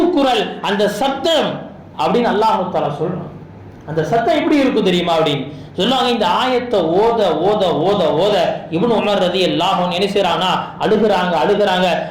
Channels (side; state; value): both; identical; correlation 1.00